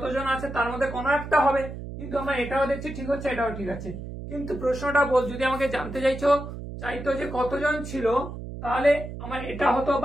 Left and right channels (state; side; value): noise; right; hum, 9 dB below the sound